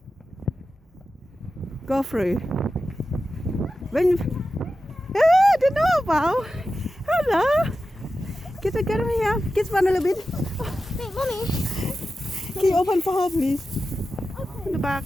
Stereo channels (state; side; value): normal; both; correlation 0.93